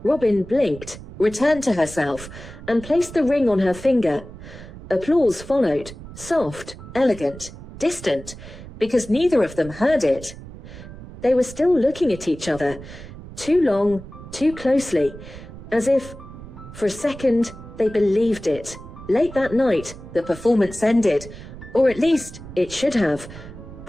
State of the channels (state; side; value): noise; right; rumble, 15 dB below the sound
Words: Robin blinked, returned to herself, and placed the ring on her finger. Applause followed, soft, elegant, distant, because neither of them heard it. They were still looking at each other, too long, too closely, as if, for a second, they believed it. Late that night, the performance ended, or at least it should have.